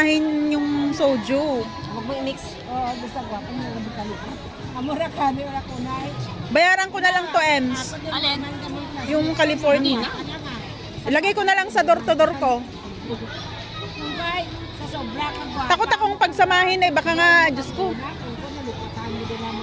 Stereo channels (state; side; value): identical; both; correlation 1.00